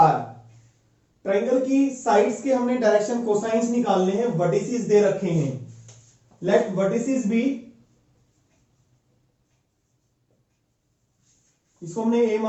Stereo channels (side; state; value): both; identical; correlation 1.00